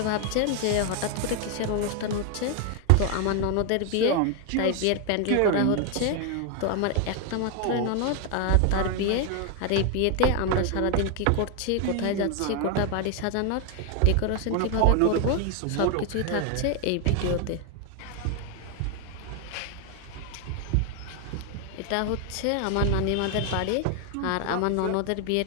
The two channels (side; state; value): both; different; correlation 0.01